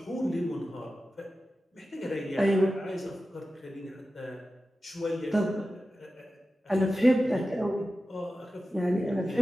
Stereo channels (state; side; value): normal; both; correlation 0.94